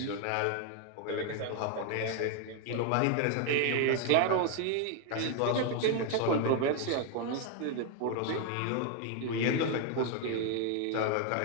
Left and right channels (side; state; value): both; different; correlation 0.01